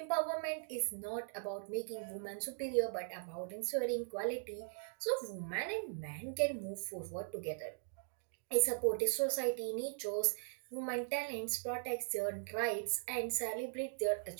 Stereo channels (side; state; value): left; silent; digital silence